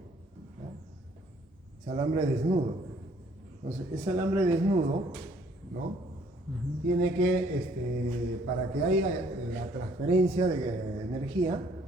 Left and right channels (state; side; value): normal; both; correlation 0.62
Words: ¿no? Es alambre desnudo. Entonces, ese alambre desnudo, ¿no? Tiene que, para que haya la transferencia de energía,